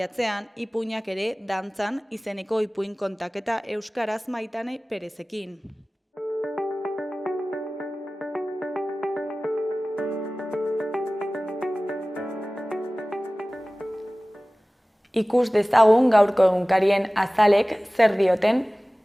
ipuinak ere dantzan izeneko ipuin kontaketa euskaraz Maitane Perezekin. Ikus dezagun gaurko egunkarien azalek zer dioten.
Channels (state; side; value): normal; both; correlation 0.98